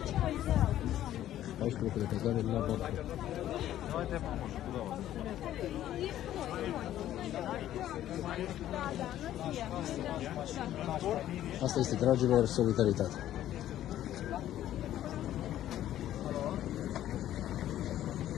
14 locuri de cazare la Bacău. Asta este, dragilor, solidaritate.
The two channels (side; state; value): right; quieter; 12.5 dB